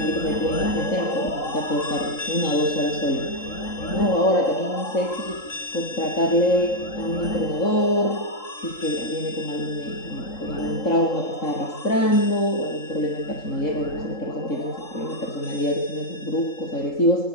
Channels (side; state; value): right; late; 3.7 ms